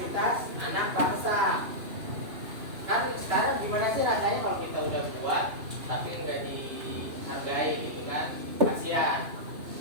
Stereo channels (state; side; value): late; left; 2.9 ms